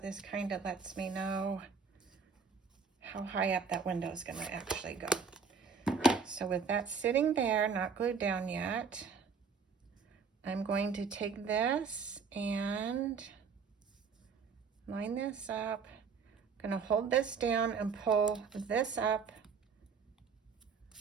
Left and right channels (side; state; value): left; quieter; 5.6 dB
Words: kind of lets me know how high up that window is gonna actually go. So with that sitting there, not glued down yet, I'm going to take this and line this up. I'm gonna hold this down and pull this up.